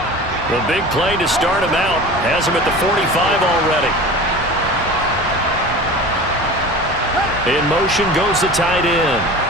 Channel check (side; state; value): both; normal; correlation 0.36